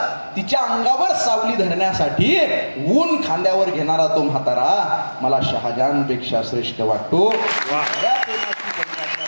तिच्या अंगावर सावली धरण्यासाठी ऊन खांद्यावर घेणारा तो म्हातारा मला शहाजहानपेक्षा श्रेष्ठ वाटतो.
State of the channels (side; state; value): both; inverted; correlation -1.00